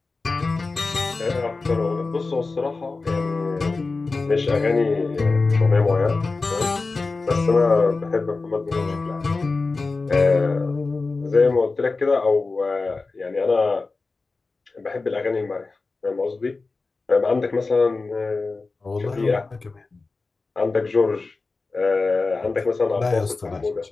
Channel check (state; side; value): quieter; right; 3.8 dB